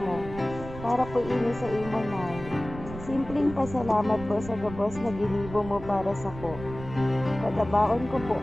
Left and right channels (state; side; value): noise; right; rumble, 13 dB below the sound